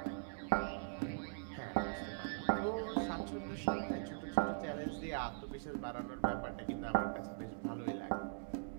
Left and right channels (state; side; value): silent; left; digital silence